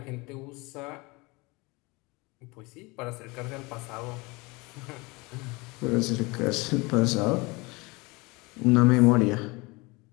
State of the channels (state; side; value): quieter; right; 25.3 dB